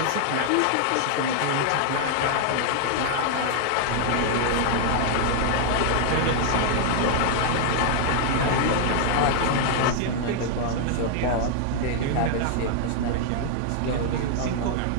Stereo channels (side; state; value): both; different; correlation 0.00